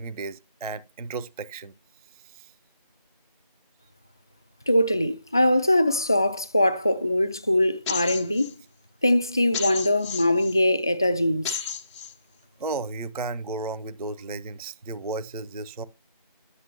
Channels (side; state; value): both; inverted; correlation -0.84